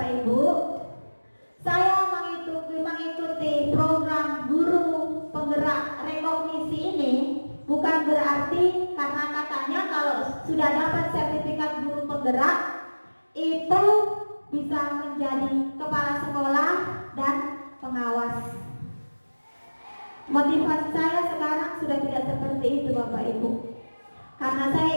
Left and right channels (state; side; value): inverted; both; correlation -1.00